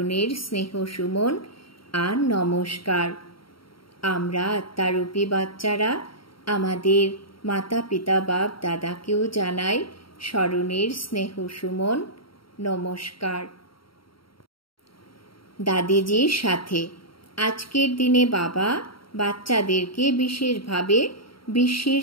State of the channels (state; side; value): late; right; 0.74 ms